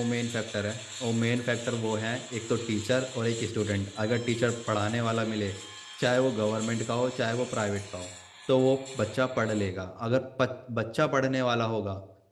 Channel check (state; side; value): identical; both; correlation 1.00